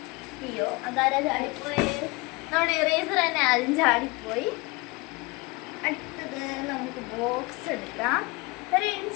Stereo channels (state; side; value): quieter; right; 25.1 dB